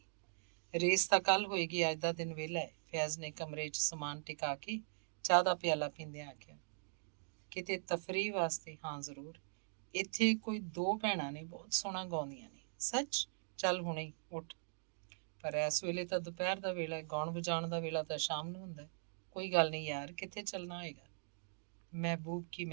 ਰੇਸ ਤਾਂ ਕੱਲ੍ਹ ਹੋਏਗੀ, ਅੱਜ ਦਾ ਦਿਨ ਵਿਹਲਾ ਹੈ। ਫੈਜ਼ ਨੇ ਕਮਰੇ 'ਚ ਸਮਾਨ ਟਿਕਾ ਕੇ ਚਾਹ ਦਾ ਪਿਆਲਾ ਪੀਂਦਿਆਂ ਆਖਿਆ। ਕਿਤੇ ਤਫਰੀਹ ਵਾਸਤੇ? ਹਾਂ ਜ਼ਰੂਰ। ਇੱਥੇ ਕੋਈ 2 ਭੈਣਾਂ ਨੇ, ਬਹੁਤ ਸੋਹਣਾ ਗਾਉਂਦੀਆਂ ਨੇ। ਸੱਚ? ਚੱਲ ਹੁਣੇ ਹੀ ਉੱਠ। ਪਰ ਇਸ ਵੇਲੇ ਤਾਂ ਦੁਪਹਿਰ ਦਾ ਵੇਲਾ ਹੈ, ਗਾਉਣ ਵਜਾਉਣ ਦਾ ਵੇਲਾ ਤਾਂ ਸ਼ਾਮ ਨੂੰ ਹੁੰਦਾ। ਕੋਈ ਗੱਲ ਨਹੀਂ ਯਾਰ, ਕਿੱਥੇ ਚੱਲਣਾ ਹੋਏਗਾ? ਮਹਿਬੂਬ ਕੀ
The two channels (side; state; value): left; silent; digital silence